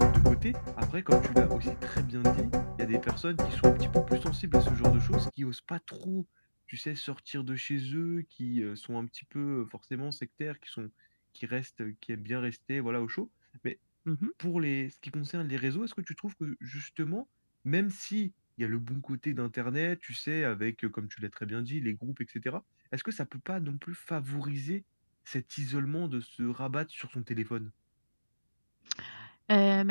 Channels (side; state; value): both; inverted; correlation -1.00